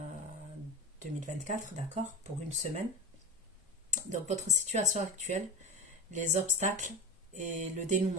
d'accord, pour une semaine. Donc votre situation actuelle, les obstacles et le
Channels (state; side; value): normal; both; correlation 0.24